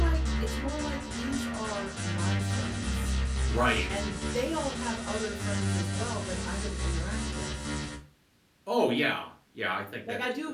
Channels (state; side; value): identical; both; correlation 1.00